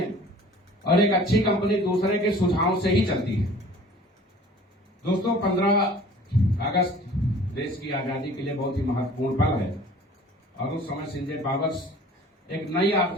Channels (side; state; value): both; normal; correlation 0.48